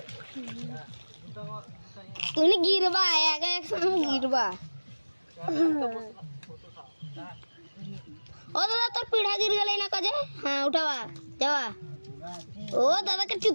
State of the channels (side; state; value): both; inverted; correlation -1.00